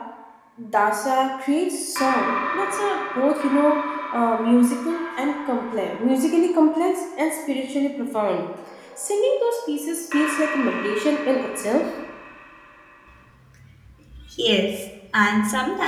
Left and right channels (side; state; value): both; identical; correlation 1.00